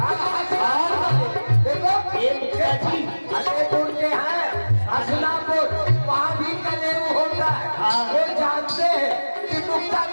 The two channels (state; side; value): inverted; both; correlation -1.00